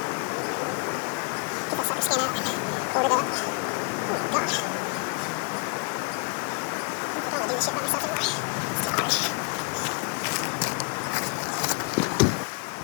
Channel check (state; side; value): quieter; right; 34.1 dB